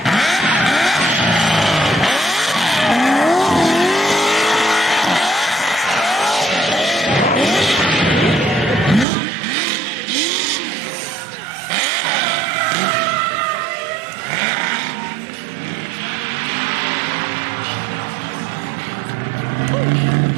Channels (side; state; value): left; drops out; at 9.1 s